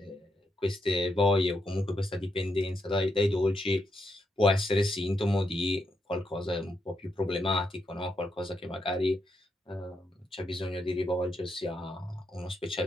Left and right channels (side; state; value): both; normal; correlation 0.81